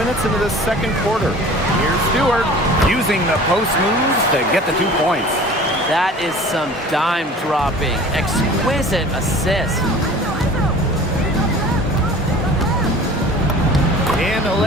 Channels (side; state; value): both; normal; correlation 0.44